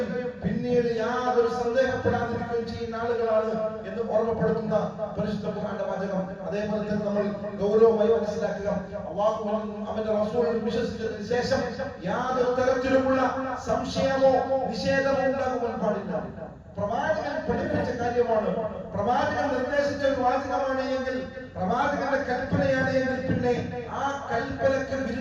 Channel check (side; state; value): both; identical; correlation 1.00